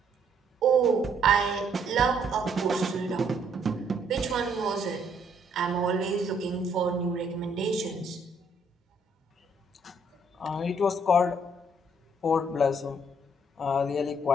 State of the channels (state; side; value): normal; both; correlation 0.68